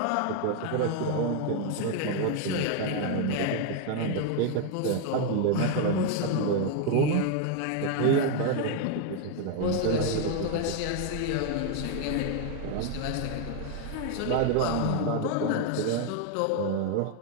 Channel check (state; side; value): different; both; correlation 0.00